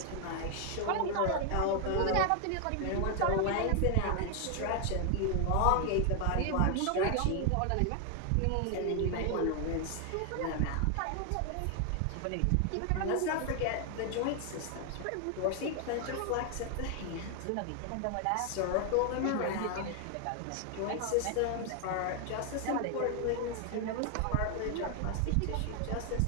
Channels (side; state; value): both; different; correlation 0.00